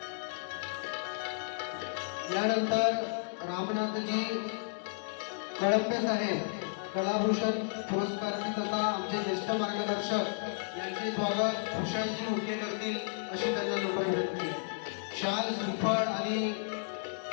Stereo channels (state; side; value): silent; right; digital silence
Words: यानंतर रामनाथजी कळंबे साहेब, कलाभूषण पुरस्कारार्थी तथा आमचे ज्येष्ठ मार्गदर्शक यांचे स्वागत भूषणजी उके करतील अशी त्यांना नम्र विनंती आहे. शाल श्रीफळ आणि